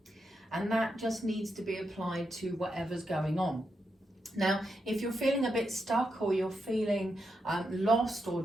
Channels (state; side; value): normal; both; correlation 0.84